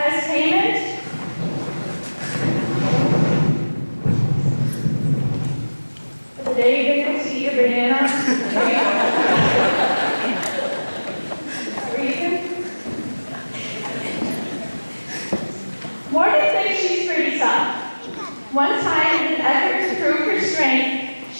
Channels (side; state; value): both; inverted; correlation -1.00